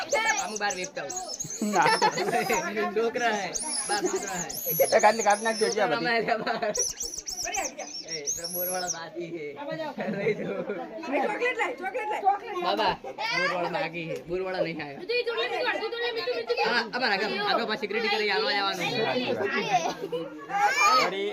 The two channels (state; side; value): identical; both; correlation 1.00